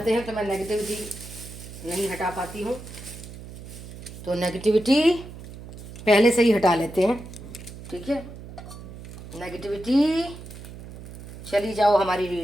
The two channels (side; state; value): right; noise; hum, 14 dB below the sound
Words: हैं तो मैं नेगेटिविटी नहीं हटा पाती हूँ। तो नेगेटिविटी पहले से ही हटा लेते हैं। ठीक है, नेगेटिविटी चली जाओ हमारी